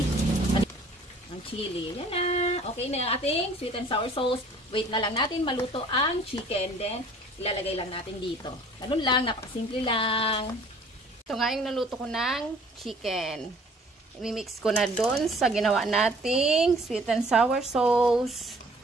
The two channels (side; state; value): both; normal; correlation 0.53